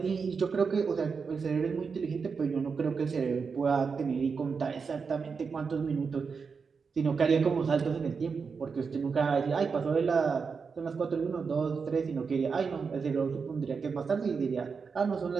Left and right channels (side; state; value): left; quieter; 5.4 dB